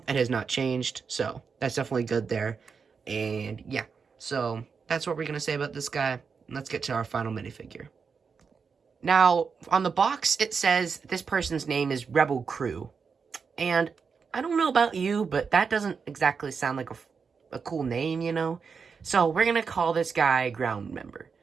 it has not changed, so that's definitely good there. And yeah, so that's what we're gonna say about this guy. Let's get to our final minifigure. Now, on the box, it says this person's name is Rebel Crew. And I don't know about you, but that doesn't exactly sound like a cool name, you know? So we're gonna call this guy Ground Member.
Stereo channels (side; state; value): left; quieter; 5.6 dB